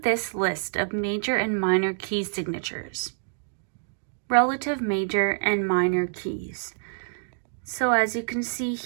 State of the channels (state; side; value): silent; left; digital silence